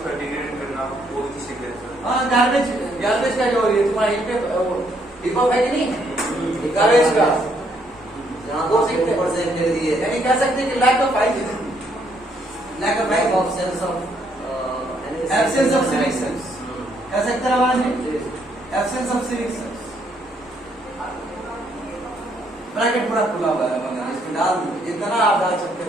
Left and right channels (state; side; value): normal; both; correlation 0.71